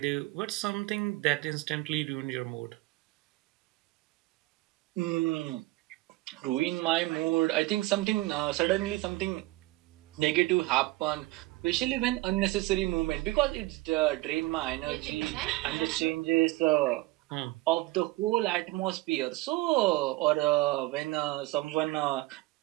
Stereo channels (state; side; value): quieter; left; 19.9 dB